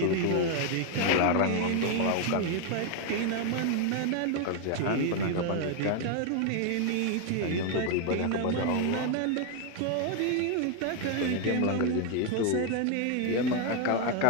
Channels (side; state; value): both; different; correlation 0.01